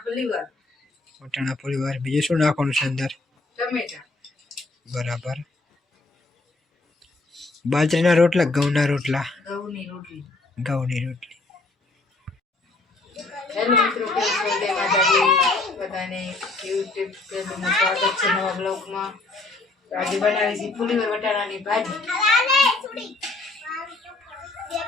વટાણા ફુલીવાર બીજું શું નાખવાનું છે અંદર? ટમેટા. બરાબર. બાજરીના રોટલા ઘઉંના રોટલા? ઘઉંની રોટલી. ઘઉંની રોટલી. હેલો મિત્રો, કેમ છો? જય માતાજી બધાને. યુટ્યુબ ચેનલમાં સ્વાગત છે નવા બ્લોગમાં. આજે બનાવી છે ફુલીવાર વટાણાની ભાજી.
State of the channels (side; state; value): right; quieter; 3.2 dB